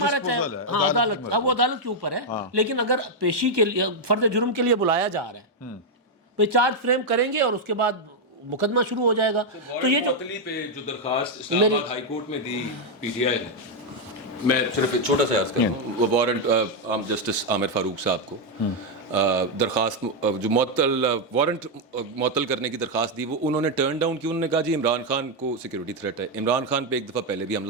رچا ہے, ہاں عدالت, اب وہ عدالت کے اوپر ہے. لیکن اگر پیشی کے لیے فرد جرم کے لیے بلایا جا رہا ہے, وہ چارج فریم کریں گے اور اس کے بعد مقدمہ شروع ہو جائے گا. تو یہ معطلی پہ جو درخواست اسلام آباد ہائی کورٹ میں دی پی ٹی آئی نے, میں صرف ایک چھوٹا سا عرض کروں, وہ وارنٹ جسٹس عامر فاروق صاحب کو درخواست جو وارنٹ معطل کرنے کی درخواست دی, وہ انہوں نے ٹرن ڈاؤن کی. انہوں نے کہا جی عمران خان کو سیکورٹی تھریٹ ہے, عمران خان پہ ایک دفعہ پہلے بھی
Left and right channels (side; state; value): both; normal; correlation 0.01